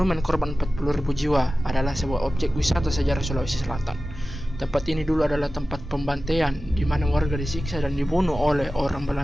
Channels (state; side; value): normal; both; correlation 0.95